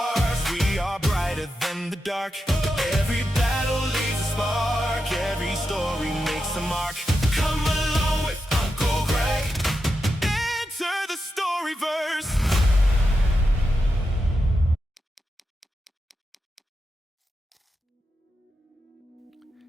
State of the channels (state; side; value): normal; both; correlation 0.88